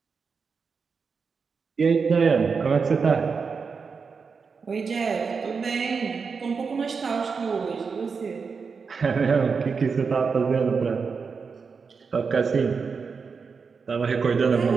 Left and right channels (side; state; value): left; quieter; 5.3 dB